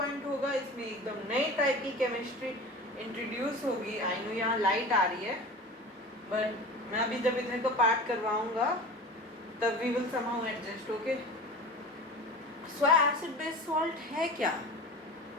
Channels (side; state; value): both; normal; correlation 0.35